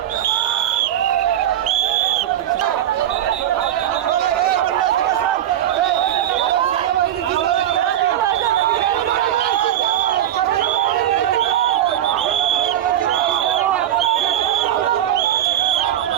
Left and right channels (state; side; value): quieter; left; 11.5 dB